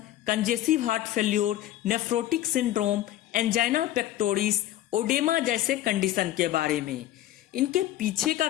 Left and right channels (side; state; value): right; quieter; 13.9 dB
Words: congestive heart failure, nephrotic syndrome, angina pectoris, oedema जैसे कंडीशन के बारे में। इनके पीछे का